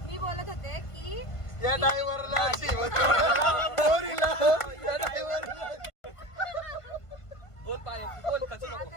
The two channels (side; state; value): right; late; 1.5 ms